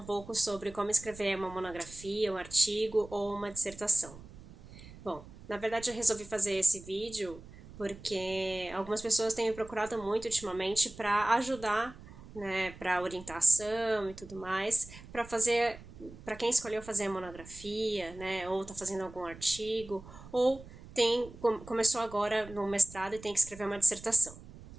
pouco sobre como escrever uma monografia, um artigo ou uma dissertação. Bom, na verdade eu resolvi fazer esse vídeo porque algumas pessoas têm me procurado muito ultimamente para ajudar, né, para orientação e tudo mais, para quem escolheu fazer a monografia, né, ou está fazendo algum artigo, ou começou agora no mestrado e tem que escrever uma dissertação.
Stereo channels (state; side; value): noise; right; rumble, 17 dB below the sound